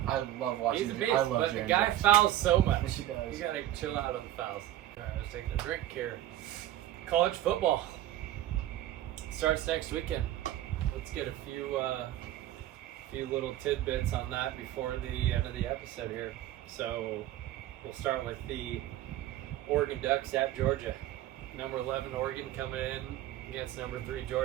I love watching. He's a I beast, love but the Jaren guy Jackson. fouls so much. He does. You gotta chill out on the fouls. Alright, I was taking a drink here. College football starts next weekend. Let's get a few little tidbits on that before the end of the episode here. So we'll start with the Oregon Ducks at Georgia. Number 11 Oregon coming in against number 3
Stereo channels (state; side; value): quieter; left; 13.5 dB